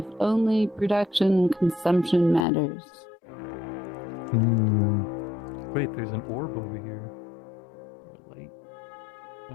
Only production and consumption matters. Hmm. Wait, there's an orb over here.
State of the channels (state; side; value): drops out; right; at 2.5 s